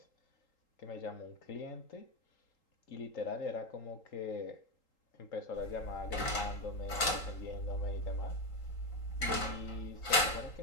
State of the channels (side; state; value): right; late; 3.8 ms